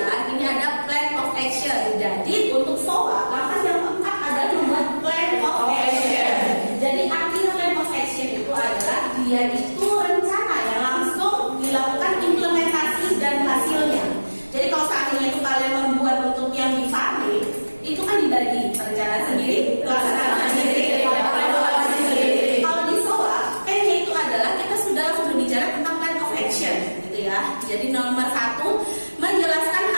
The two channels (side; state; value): both; inverted; correlation -1.00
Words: ini ada plan of action. Jadi untuk SOA, langkah yang keempat adalah membuat plan of action. Jadi artinya plan of action itu adalah dia itu rencana yang langsung dilakukan implementasi dan hasilnya. Jadi kalau seandainya itu kalian membuat untuk yang di Farme, itu kan dibagi perencanaan sendiri, pelaksanaan sendiri, evaluasi sendiri. Kalau di SOA, P-nya itu adalah kita sudah berbicara tentang plan of action, gitu ya. Jadi nomor 1, menjelaskan